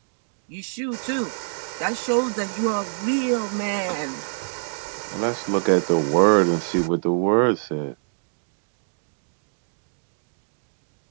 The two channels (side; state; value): left; silent; digital silence